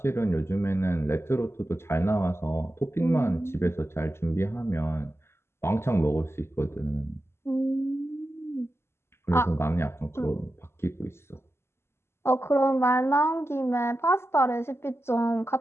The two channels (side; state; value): right; late; 0.12 ms